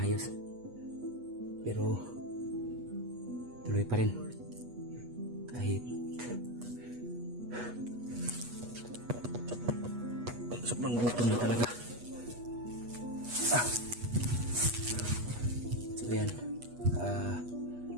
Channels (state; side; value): late; left; 8.3 ms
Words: pero tuloy pa rin kahit sobrang gutom na talaga. So yan,